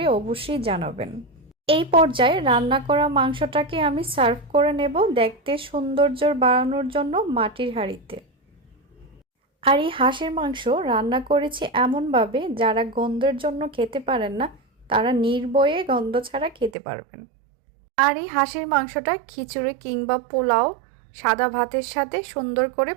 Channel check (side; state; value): left; drops out; at 16.7 s